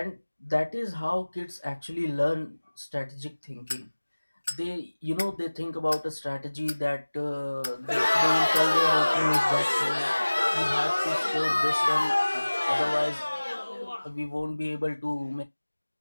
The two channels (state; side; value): inverted; both; correlation -1.00